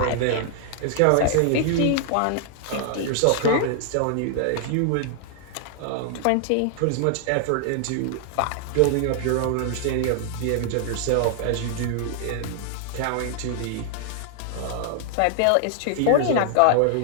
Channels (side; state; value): both; different; correlation 0.00